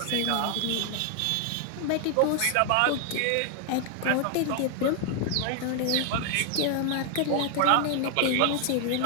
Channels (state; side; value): different; both; correlation 0.00